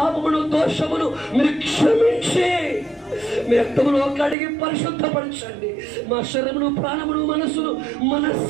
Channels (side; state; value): left; drops out; at 4.4 s